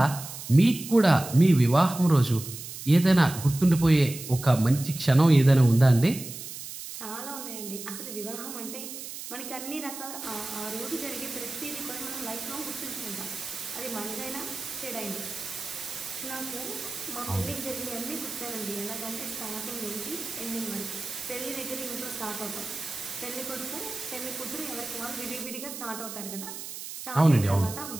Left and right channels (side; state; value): right; noise; hiss, 10 dB below the sound